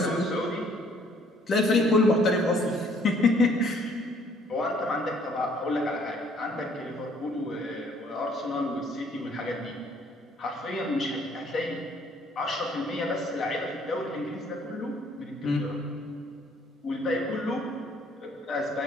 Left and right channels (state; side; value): normal; both; correlation 0.62